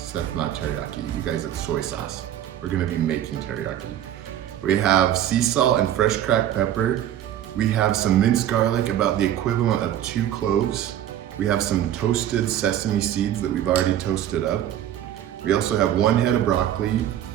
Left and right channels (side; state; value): left; quieter; 11.5 dB